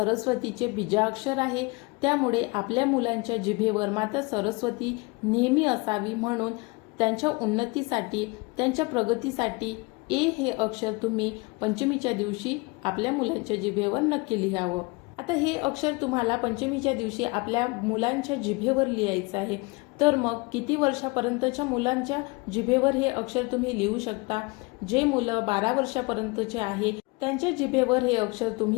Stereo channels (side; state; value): right; quieter; 27.1 dB